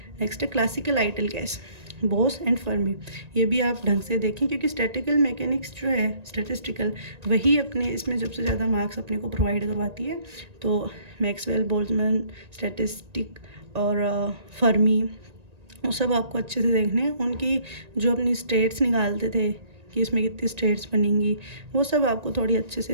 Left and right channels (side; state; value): left; late; 1.9 ms